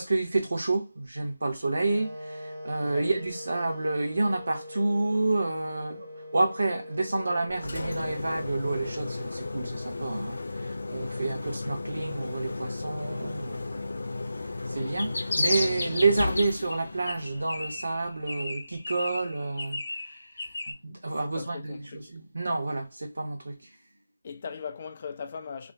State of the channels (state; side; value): inverted; both; correlation -0.92